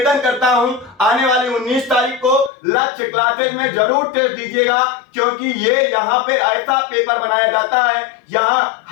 करता हूं, आने वाली 19 तारीख को लक्ष्य क्लासेस में जरूर टेस्ट दीजिएगा, क्योंकि ये यहाँ पे ऐसा पेपर बनाया जाता है, यहाँ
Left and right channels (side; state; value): right; drops out; at 2.5 s